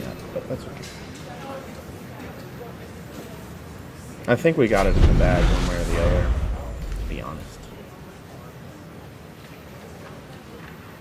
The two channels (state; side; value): identical; both; correlation 1.00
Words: up, but that's okay. I think we got it in the bag one way or the other, to be honest.